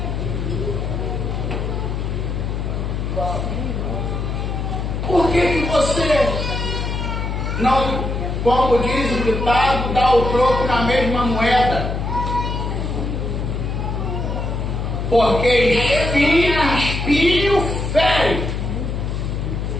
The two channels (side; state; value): left; noise; hum, 2 dB below the sound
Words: por que você não, como diz o ditado, dá o troco na mesma moeda? Porque espinho fere,